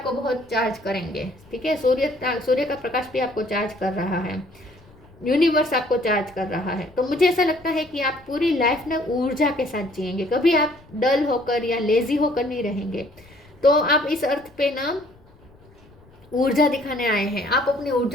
बहुत चार्ज करेंगे, ठीक है। सूर्य का प्रकाश भी आपको चार्ज कर रहा है, यूनिवर्स आपको चार्ज कर रहा है। तो मुझे ऐसा लगता है कि आप पूरी लाइफ ना ऊर्जा के साथ जिएंगे, कभी आप डल होकर या लेजी होकर नहीं रहेंगे। तो आप इस अर्थ पे ना ऊर्जा दिखाने आए हैं, आप अपनी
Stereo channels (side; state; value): left; noise; rumble, 27 dB below the sound